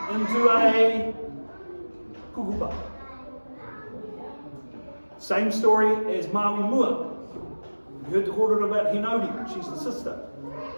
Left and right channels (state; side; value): inverted; both; correlation -1.00